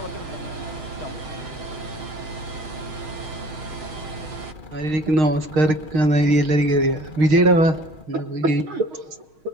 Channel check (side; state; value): left; late; 6.3 ms